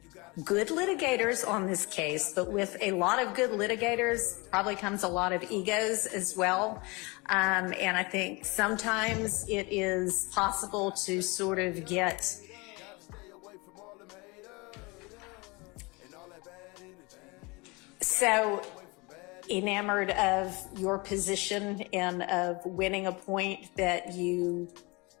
good litigators on this case, but with a lot of good litigators probably comes a lot of egos as well. And I think sometimes it is possible to sort of get so enamored of your position and of winning a point that you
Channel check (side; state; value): right; quieter; 26.4 dB